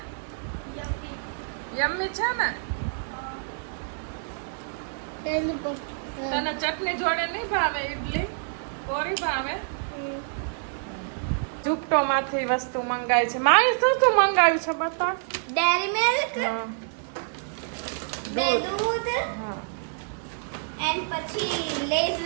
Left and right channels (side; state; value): left; silent; digital silence